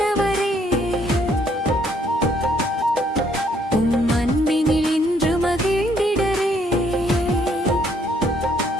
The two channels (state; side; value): normal; both; correlation 0.67